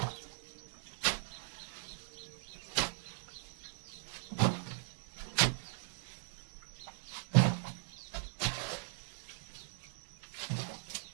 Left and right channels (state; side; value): silent; left; digital silence